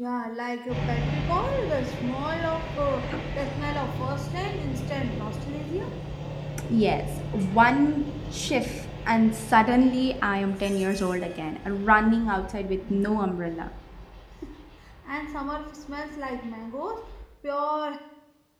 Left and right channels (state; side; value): identical; both; correlation 1.00